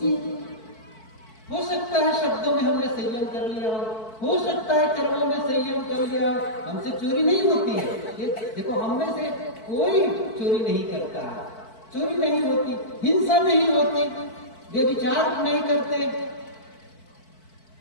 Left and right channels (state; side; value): late; right; 4.5 ms